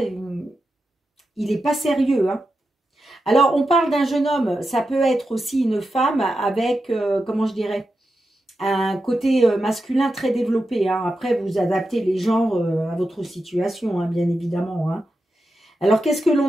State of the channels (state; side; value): normal; both; correlation 0.89